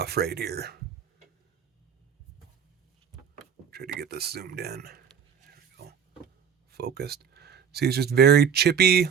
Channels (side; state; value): left; quieter; 7.4 dB